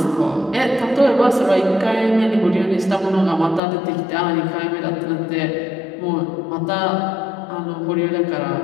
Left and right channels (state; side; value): drops out; right; at 3.6 s